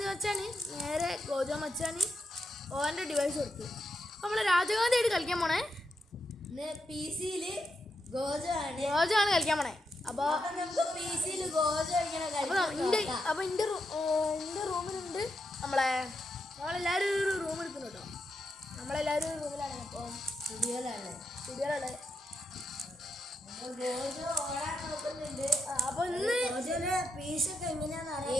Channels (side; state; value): both; normal; correlation 0.83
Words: മച്ചാന് നേരെ ഗോജോ മച്ചാന് ഓൻ്റെ ഡിവൈസ് കൊടുത്തു. അപ്പം നമ്മളെ രാജഗാന്ധി ആയിട്ട് കളിക്കാൻ പോണേ. PC ഗോജോ ആണ് കളിക്കാൻ പോണേ. അപ്പോൾ എൻ്റെ റൂമിലുണ്ട് നമ്മളെല്ലാവരും ഒരു റൂം എടുക്കുന്നു കേട്ടോ. നമ്മളെല്ലാവരും ഒരു റൂമിലാണ്. അപ്പോൾ സ്റ്റുഡിയോയിലാണ്. അപ്പോൾ ഇന്ന്